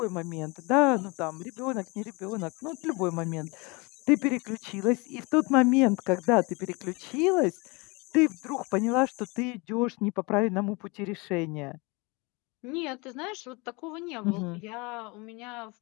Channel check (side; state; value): right; quieter; 27.4 dB